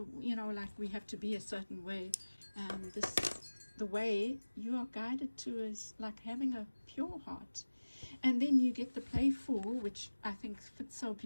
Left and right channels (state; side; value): inverted; both; correlation -1.00